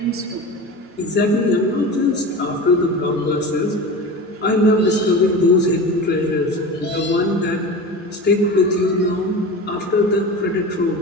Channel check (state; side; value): normal; both; correlation 0.31